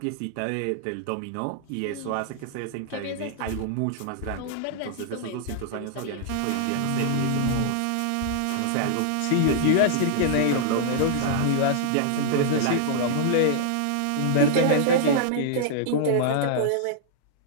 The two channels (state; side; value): different; both; correlation -0.01